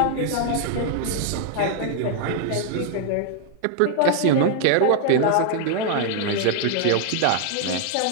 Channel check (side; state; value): both; different; correlation 0.00